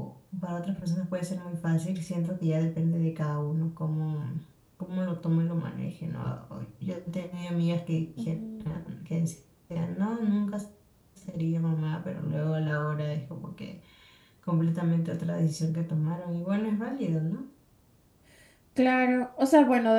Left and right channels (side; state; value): both; identical; correlation 1.00